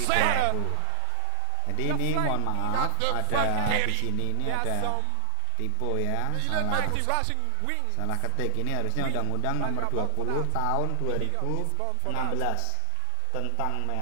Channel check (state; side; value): different; both; correlation 0.00